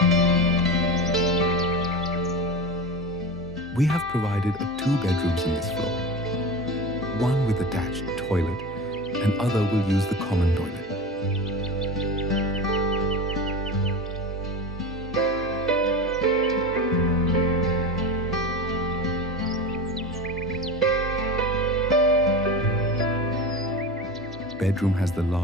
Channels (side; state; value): both; normal; correlation 0.27